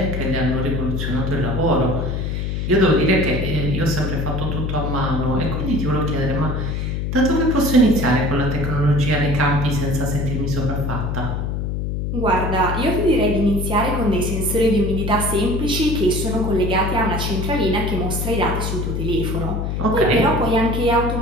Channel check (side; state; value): left; noise; hum, 2 dB below the sound